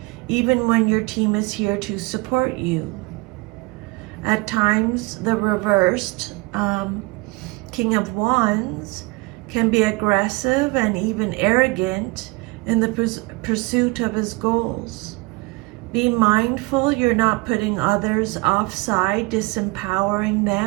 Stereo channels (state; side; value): quieter; left; 24.3 dB